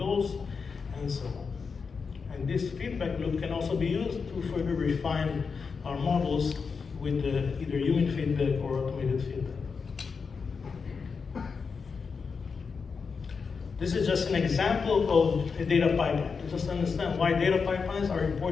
and so on. And this feedback loop can also be used to further refine our models with either human feedback or automated feedback. This is just an example of a data pipeline, to just understand why data pipelines are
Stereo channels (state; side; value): quieter; right; 5.3 dB